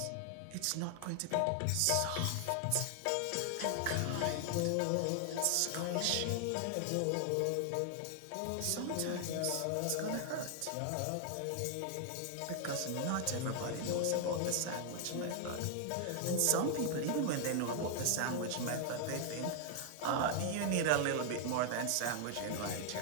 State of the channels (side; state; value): both; different; correlation 0.00